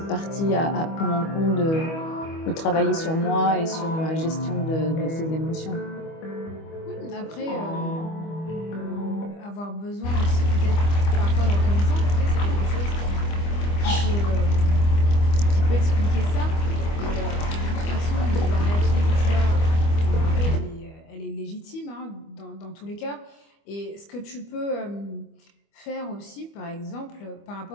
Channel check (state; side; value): late; right; 25 ms